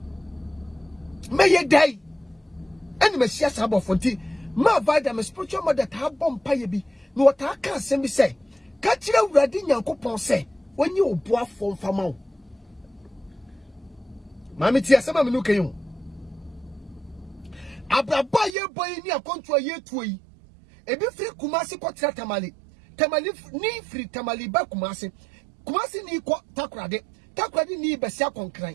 me ye dai eni me sia saabo afo nti ma vada me spiritual mother ta bom paye bi no wata ka asem bi say ka kire awurade nyankopon say wonye obo afo mfama wo mami ti asema me no kayo abraba ye boy ni akonto ye tuoyi ebi free Kumasi kwatra tamale ni free tamale ba Kumasi ni ko takrade ni besia konkran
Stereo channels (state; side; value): drops out; left; at 18.6 s